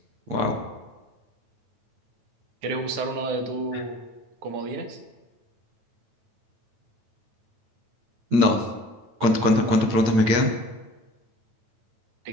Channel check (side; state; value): left; late; 9.1 ms